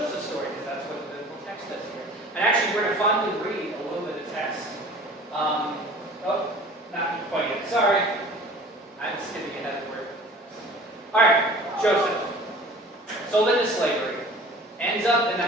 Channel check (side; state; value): both; normal; correlation 0.45